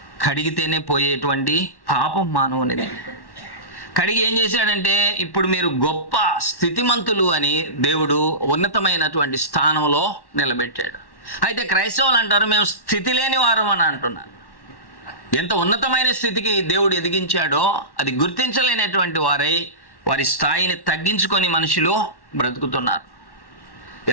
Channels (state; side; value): late; right; 1.1 ms